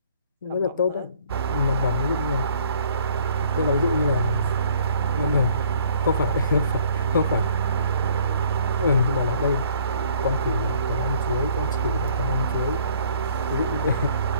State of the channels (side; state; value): both; inverted; correlation -0.58